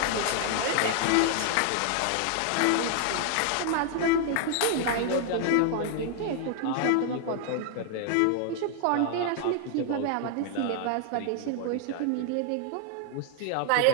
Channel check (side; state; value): both; different; correlation 0.00